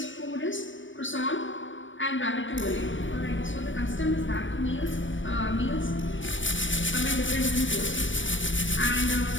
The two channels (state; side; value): late; right; 0.56 ms